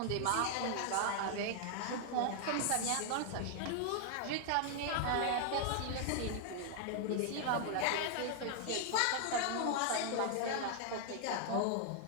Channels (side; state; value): both; different; correlation 0.00